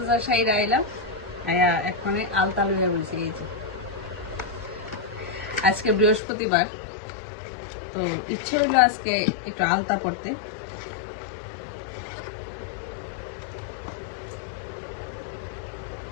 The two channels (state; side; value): drops out; right; at 6.2 s